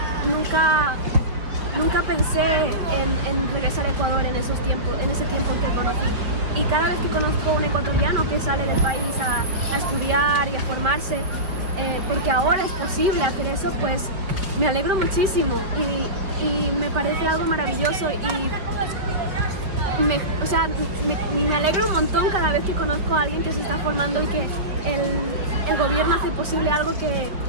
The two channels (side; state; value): left; late; 5.2 ms